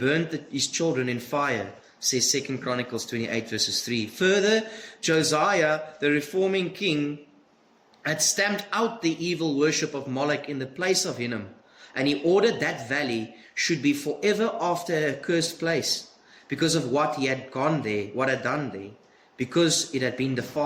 his children in fire, says 2 Chronicles 28 verses 3. Further, Josiah, the reforming king, had stamped out the evil worship of Moloch in the place of Hinnom, and he ordered that valley should be forever after a cursed place, because of what he had gone there, what had done there, because it had been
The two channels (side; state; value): both; identical; correlation 1.00